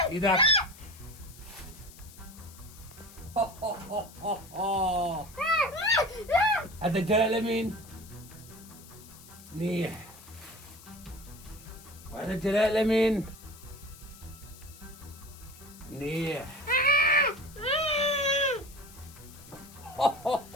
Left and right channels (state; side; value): noise; left; hiss, 20 dB below the sound